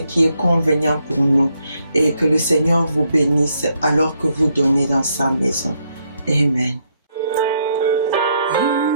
est convenient pour nous. Et que le Seigneur vous bénisse alors que vous donnez dans sa maison. Amen.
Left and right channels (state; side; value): inverted; both; correlation -0.75